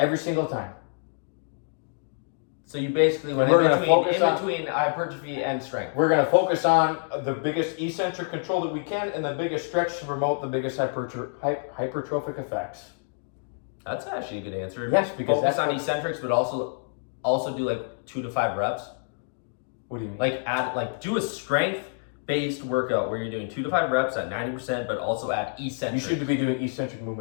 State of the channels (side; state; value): right; silent; digital silence